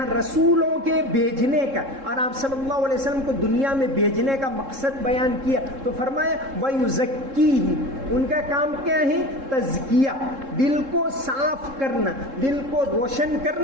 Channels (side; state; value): left; late; 3.7 ms